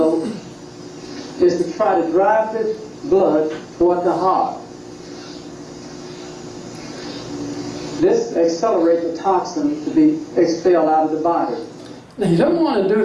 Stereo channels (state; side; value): identical; both; correlation 1.00